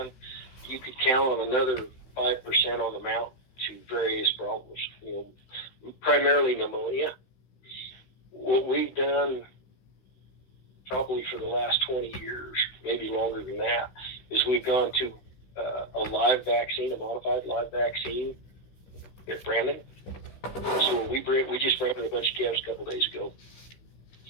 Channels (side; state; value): right; late; 16 ms